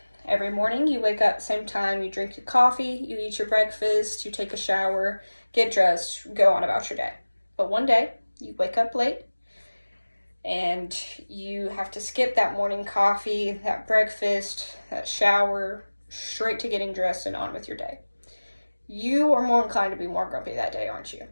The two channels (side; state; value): both; inverted; correlation -1.00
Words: Every morning you wake up same time, you drink your coffee, you eat your breakfast, you take a shower, get dressed, go on about your day. But one day, you wake up late, and you have to skip that morning coffee, that breakfast, that shower, straight to getting dressed and on with your day. You are more inclined to be more grumpy that day, aren't you?